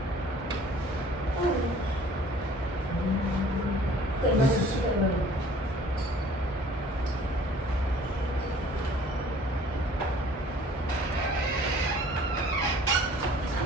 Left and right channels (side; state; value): both; normal; correlation 0.52